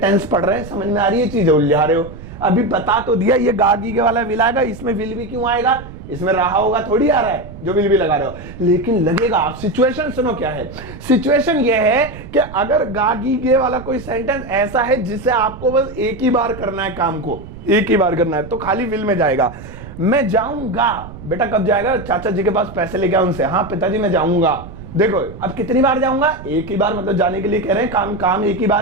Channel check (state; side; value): noise; right; rumble, 14 dB below the sound